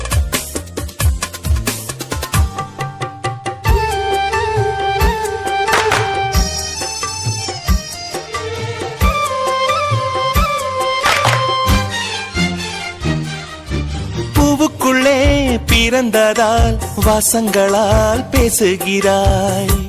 பூவுக்குள்ளே பிறந்ததால் வாசங்களால் பேசுகிறாய்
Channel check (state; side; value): identical; both; correlation 1.00